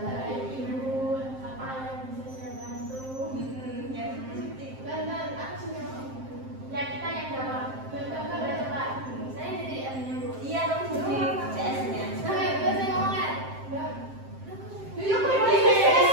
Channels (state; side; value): late; left; 7.6 ms